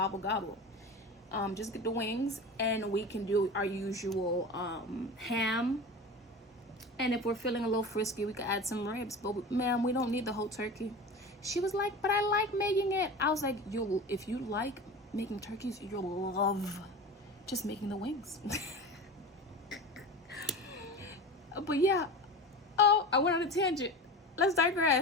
Just get the wings, and we can do our usual ham. And if we're feeling a little frisky, we could add some ribs. But ma'am, we don't need the whole turkey. She was like, but I like making it. I was like, if you like making turkeys, you'll love just making the wings. But yeah. Oh, I went on a tangent. Let's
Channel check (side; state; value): both; normal; correlation 0.31